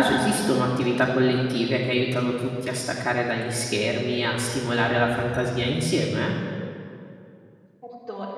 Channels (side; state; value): both; identical; correlation 1.00